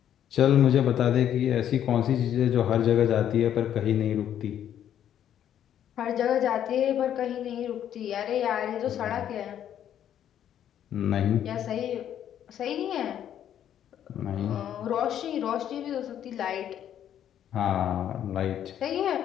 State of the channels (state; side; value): quieter; right; 10.3 dB